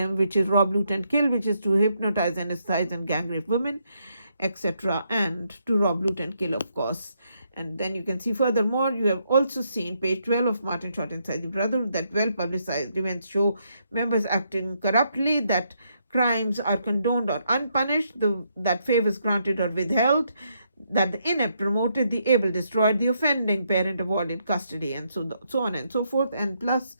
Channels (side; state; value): both; inverted; correlation -0.77